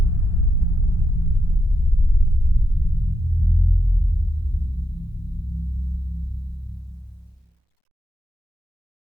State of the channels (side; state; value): both; normal; correlation 0.83